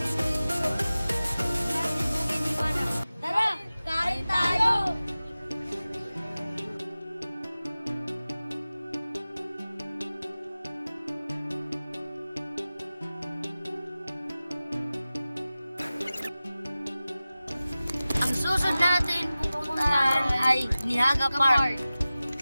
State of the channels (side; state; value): both; inverted; correlation -0.97